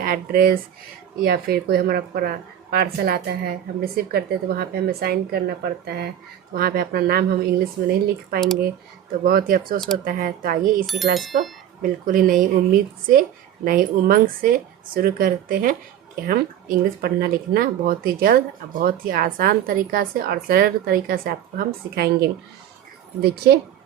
एड्रेस या फिर कोई हमारा पार्सल आता है, हम रिसीव करते हैं तो वहाँ पे हमें साइन करना पड़ता है। तो वहाँ पे अपना नाम हम इंग्लिश में नहीं लिख पाएंगे तो बहुत ही अफसोस होता है। तो आइए इसी क्लास को बिल्कुल ही नई उम्मीद से, नई उमंग से शुरू करते हैं कि हम इंग्लिश पढ़ना लिखना बहुत ही जल्द, बहुत ही आसान तरीक़ा से और सरल तरीक़ा से आपको हम सिखाएंगे। देखिए,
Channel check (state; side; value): quieter; left; 10.5 dB